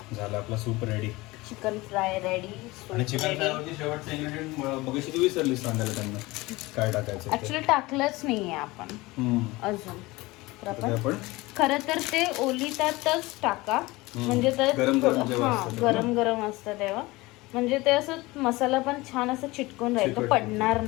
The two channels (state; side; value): quieter; right; 21.3 dB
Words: झालं आपला soup ready. Chicken fry ready. आणि चिकन फ्राय वरती शेवटचं इन्ग्रेडियंट मगाशी तू विसरलीस सांगायला त्यांना काय टाकायचं. ऍक्च्युली टाकलंच नाहीये आपण अजून. तर आपण खरं तर ते ओलितातच टाका, म्हणजे ते गरम गरम असतं तेव्हा, म्हणजे ते असं मसाला पण छान असं चिटकून राहील, तो पडणार